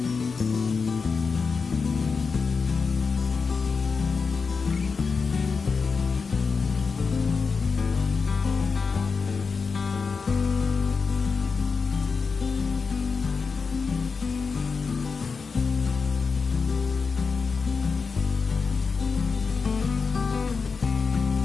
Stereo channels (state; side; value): quieter; right; 5.0 dB